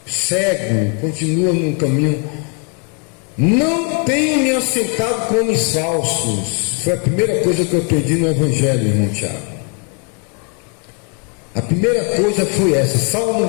cego, continua no caminho. Não tenho me assentado com homens falsos. Foi a primeira coisa que eu aprendi no Evangelho, irmão Tiago. A primeira coisa foi essa,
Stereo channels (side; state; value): right; quieter; 38.5 dB